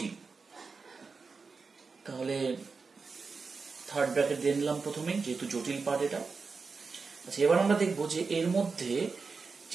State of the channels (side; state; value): left; quieter; 4.7 dB